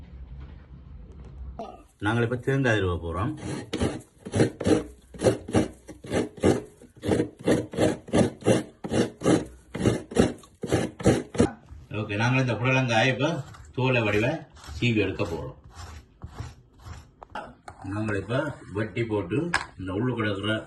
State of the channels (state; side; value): identical; both; correlation 1.00